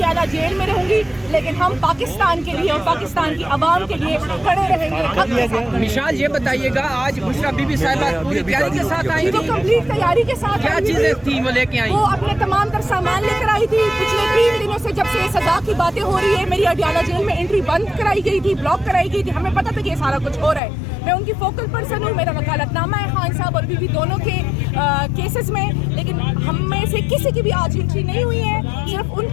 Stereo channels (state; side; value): drops out; right; at 20.6 s